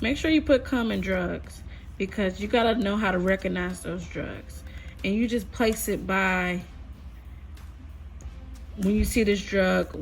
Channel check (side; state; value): both; identical; correlation 1.00